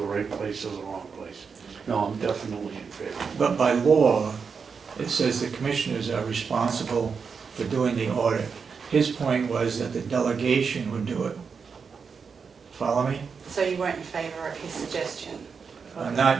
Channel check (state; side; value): quieter; left; 5.7 dB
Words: right place or the wrong place. No, I'm definitely in favor. But by law, it says the commissioners are responsible for doing the audit. His point was that the delegation would do it. Follow me? So you weren't in favor of his suggestion Not,